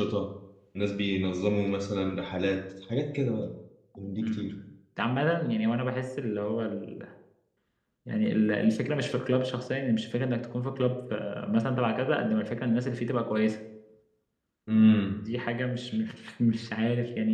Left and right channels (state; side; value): identical; both; correlation 1.00